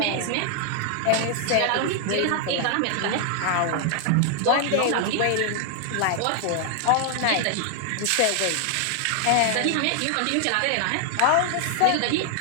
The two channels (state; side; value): different; both; correlation 0.00